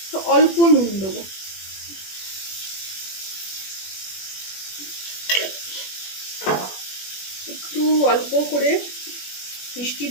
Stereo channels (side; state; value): right; late; 21 ms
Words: তো অল্প নুন দেবো। একটু অল্প করে মিষ্টি